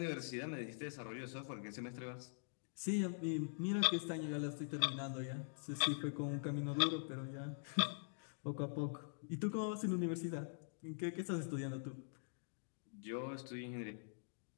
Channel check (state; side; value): silent; right; digital silence